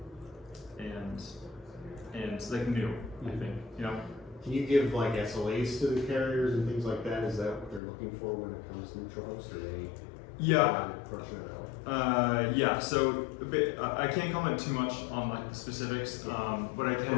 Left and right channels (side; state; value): right; drops out; at 7.8 s